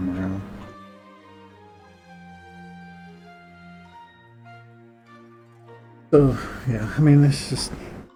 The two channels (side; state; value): both; identical; correlation 1.00